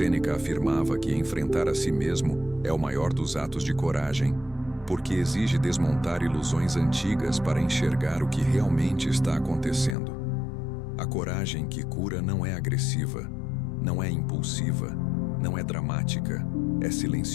afirmava que enfrentar a si mesmo é o maior dos atos de coragem, porque exige desmontar ilusões antigas para enxergar o que realmente está acontecendo. A coragem que cura não é agressiva, não é impulsiva, não é dramática, é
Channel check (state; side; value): drops out; right; at 10.0 s